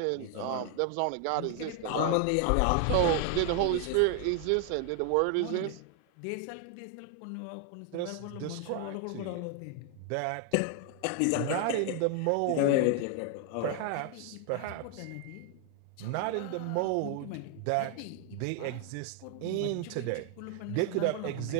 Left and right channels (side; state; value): both; different; correlation 0.00